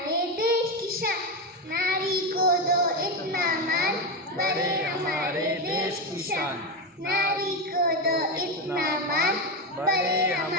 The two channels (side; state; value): both; normal; correlation 0.12